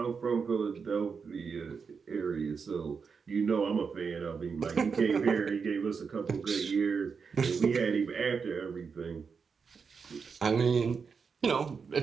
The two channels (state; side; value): quieter; left; 5.6 dB